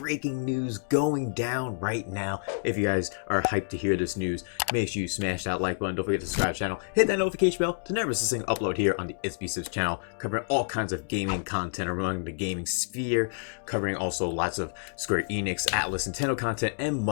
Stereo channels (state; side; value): silent; right; digital silence